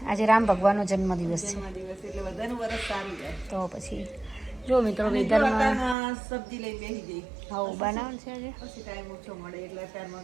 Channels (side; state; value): left; drops out; at 6.0 s